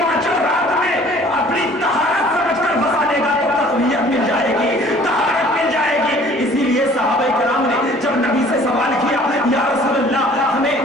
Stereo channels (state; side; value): normal; both; correlation 0.52